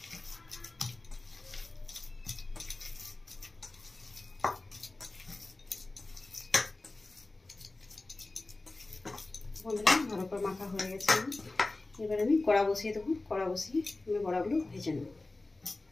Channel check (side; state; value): right; quieter; 3.1 dB